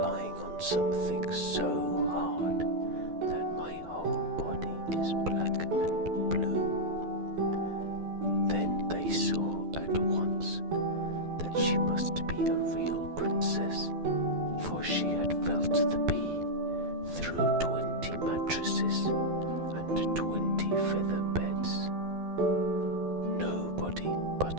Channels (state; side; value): late; left; 12 ms